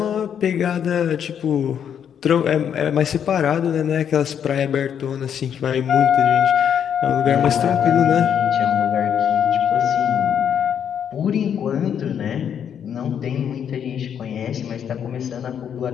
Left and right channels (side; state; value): right; quieter; 8.5 dB